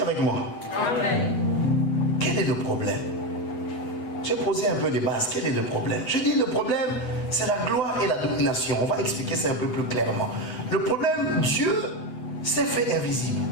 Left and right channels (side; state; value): right; late; 8.0 ms